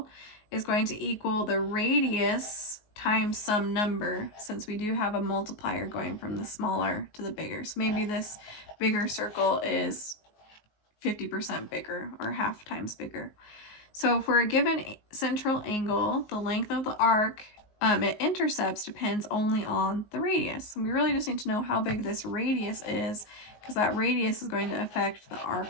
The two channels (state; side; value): late; right; 19 ms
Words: is going to equal the radius times some number, since we do have a multiplier going from the smaller to the bigger. So maybe this bigger circle is 50% bigger or half times bigger. So for a given central angle, the length of the arc it intercepts depends only on the radius. And we really just need to know how big this radius is, because that radius is going to affect the